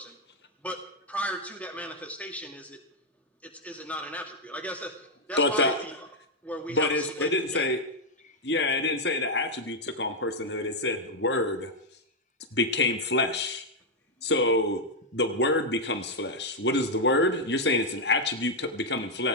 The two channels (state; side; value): normal; both; correlation 0.00